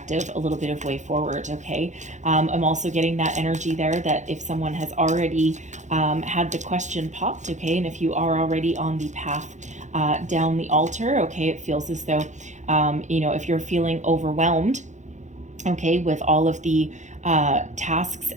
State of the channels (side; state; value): left; late; 0.35 ms